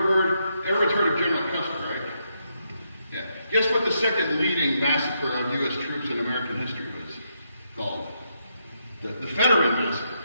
heard of General Custer, right? Yeah. Guess what the second leading massacre of U.S. troops in American history was called? The Fetterman Massacre.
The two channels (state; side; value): inverted; both; correlation -0.80